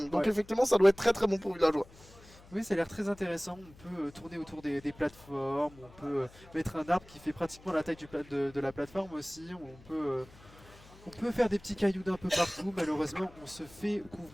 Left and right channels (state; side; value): noise; left; hum, 23 dB below the sound